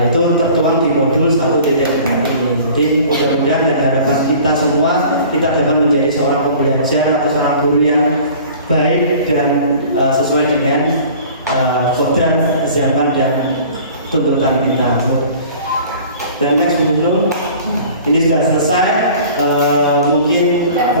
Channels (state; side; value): inverted; both; correlation -0.46